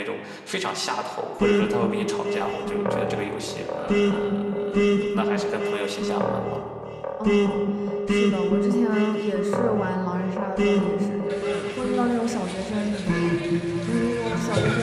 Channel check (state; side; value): identical; both; correlation 1.00